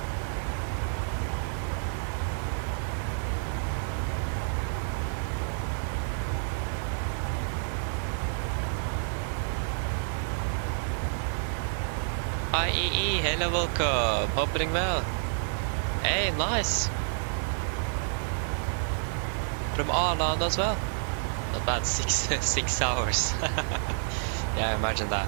IEE, hello, welcome. Hope you're doing well. Hey, nice. From Arland as well. Not bad, 6 hours. Yeah, imagine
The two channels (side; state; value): left; silent; digital silence